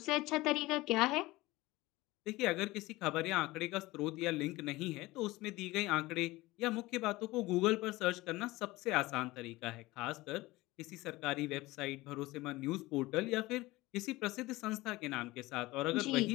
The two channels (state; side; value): quieter; right; 19.8 dB